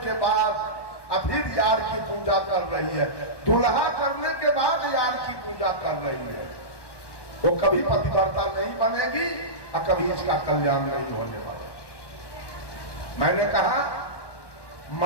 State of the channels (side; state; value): right; late; 1.1 ms